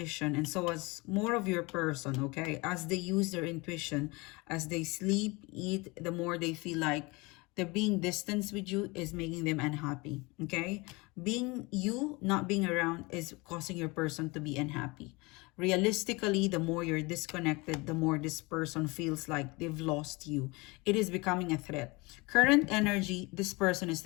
and so as more of your person, okay, as they use their intuition, as they sleep, eat, the more they feel like The being distance with you is making them unhappy, okay? Being you, not being around, is causing your person to be unhappy. Realistically, the more you're disconnected, the more this person feels like they've lost you. It is becoming a threat. Current energy, this person is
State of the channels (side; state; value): right; quieter; 25.4 dB